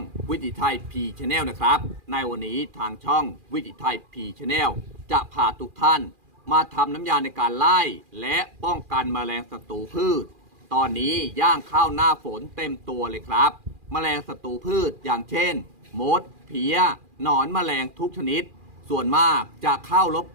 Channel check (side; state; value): left; late; 2.4 ms